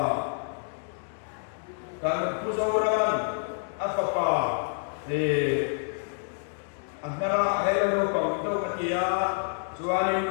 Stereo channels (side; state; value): right; silent; digital silence